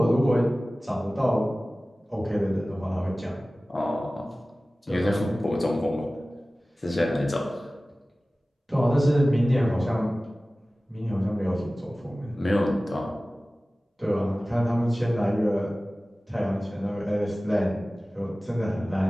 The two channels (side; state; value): both; normal; correlation 0.97